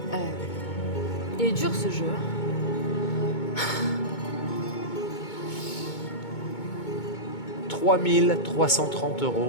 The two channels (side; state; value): right; late; 2.2 ms